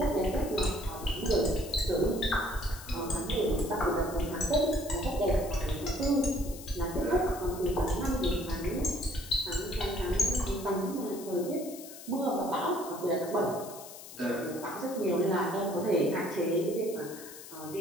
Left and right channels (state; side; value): noise; left; hiss, 15 dB below the sound